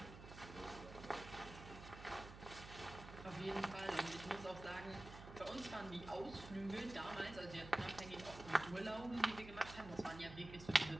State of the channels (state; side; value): noise; right; hum, 13 dB below the sound